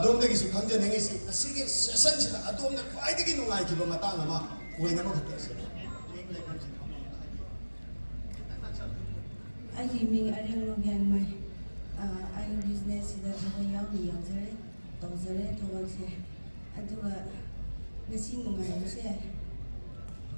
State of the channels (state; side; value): inverted; both; correlation -1.00